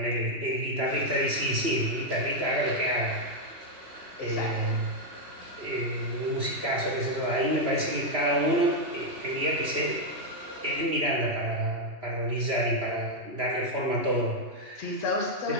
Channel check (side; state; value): left; late; 3.0 ms